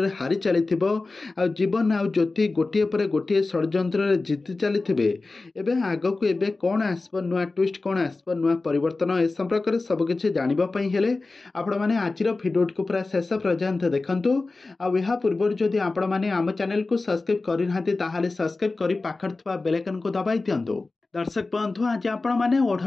हारी चली जीवन आउ ज्योति गोटे पर गोटे षड्यंत्र जीति चली आगक एबे कौन आसब नुआ ट्विस्ट कौन आसब नुआ परिवर्तन ए संपर्क में सबकिछि जानिबापई हेले आपण माने आजिर भिडियो को पूरा शेष पर्यंत देखंतु आ या पूर्व जदि आपण माने आम चैनल को सब्सक्राइब करि नाहंती ताहाले सब्सक्राइब करि पाखर थवा बेल आइकन को दबाई दियंतु। दर्शक बंधु आज आपण मैंने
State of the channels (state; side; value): quieter; right; 3.5 dB